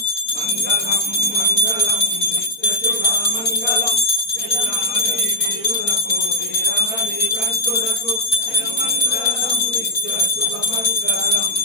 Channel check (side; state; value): right; late; 4.1 ms